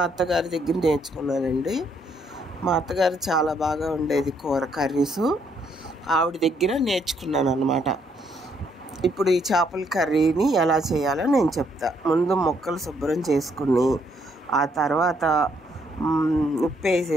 అత్తగారి దగ్గర నేర్చుకున్నానండి. మా అత్తగారు చాలా బాగా ఉండేది కూర కర్రీసు. ఆవిడ దగ్గర నేర్చుకున్నాను అన్నమాట. ఇప్పుడు ఈ చేపల కర్రీని ఎలా చేయాలో నేను చెప్తా. ముందు ముక్కలు శుభ్రం చేసుకుని ఆ తర్వాత ఉప్పు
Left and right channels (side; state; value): both; normal; correlation 0.71